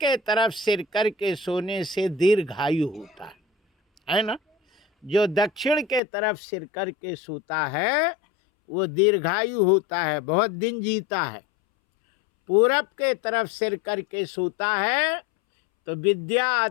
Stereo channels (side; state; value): right; drops out; at 6.0 s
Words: तरफ सिर करके सोने से दीर्घायु होता है ना। जो दक्षिण के तरफ सिर करके सोता है वो दीर्घायु होता है, बहुत दिन जीता है। पूरब के तरफ सिर करके सोता है तो विद्या